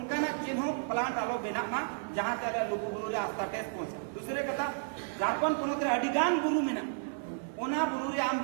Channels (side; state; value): left; silent; 56 dB below the other